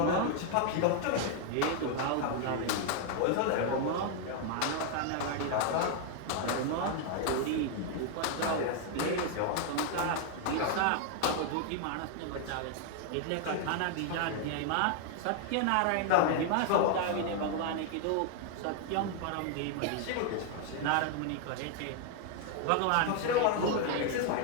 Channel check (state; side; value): different; both; correlation 0.00